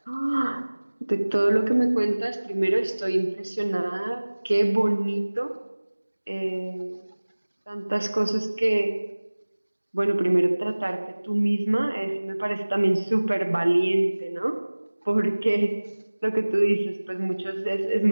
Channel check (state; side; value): inverted; both; correlation -1.00